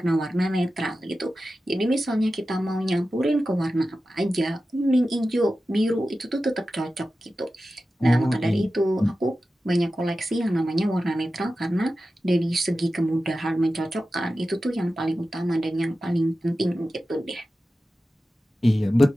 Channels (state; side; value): normal; both; correlation 0.93